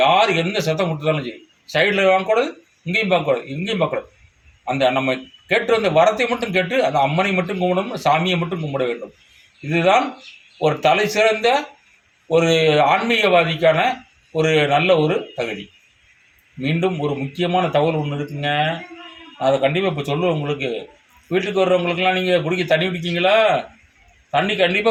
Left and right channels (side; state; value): both; identical; correlation 1.00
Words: யார் எந்த சத்தம் கொடுத்தாலும் சரி, சைடில் வாங்கக்கூடாது, இங்கேயும் பார்க்கக்கூடாது, இங்கேயும் பார்க்கக்கூடாது. அந்த நம்ம கேட்டு வந்த வரத்தை மட்டும் கேட்டு அந்த அம்மனை மட்டும் கும்பிடணும், சாமியை மட்டும் கும்பிட வேண்டும். இதுதான் ஒரு தலை சிறந்த ஒரு ஆன்மீகவாதிக்கான ஒரு நல்ல ஒரு தகுதி. மீண்டும் ஒரு முக்கியமான தகவல் ஒன்று இருக்குங்க, அதை கண்டிப்பாக இப்போ சொல்லுவேன் உங்களுக்கு. வீட்டுக்கு வர்றவங்களுக்கெல்லாம் நீங்கள் குடிக்க தண்ணி குடிக்கிங்களா? தண்ணி